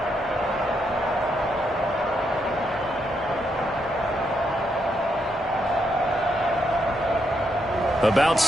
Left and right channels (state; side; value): noise; left; hum, 24 dB below the sound